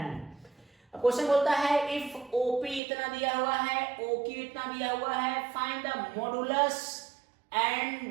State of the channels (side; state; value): left; drops out; at 2.8 s